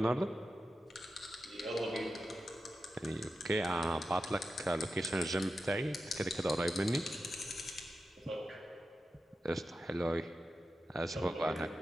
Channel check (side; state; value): both; normal; correlation 0.91